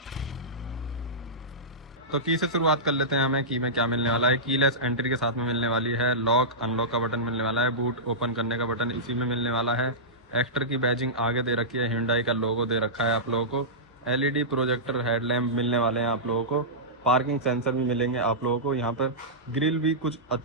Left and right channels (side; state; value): both; normal; correlation -0.15